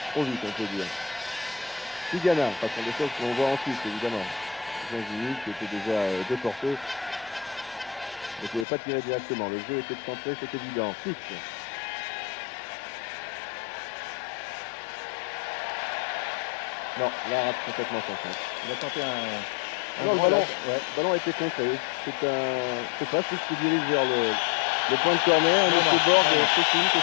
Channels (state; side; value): drops out; right; at 8.7 s